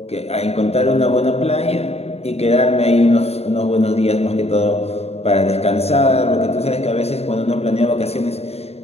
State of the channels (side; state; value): right; late; 0.30 ms